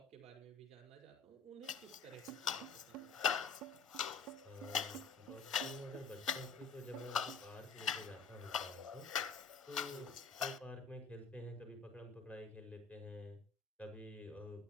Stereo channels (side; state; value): right; quieter; 5.2 dB